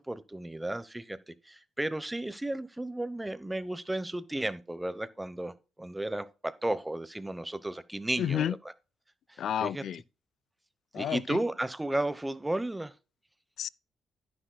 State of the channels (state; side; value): normal; both; correlation 0.89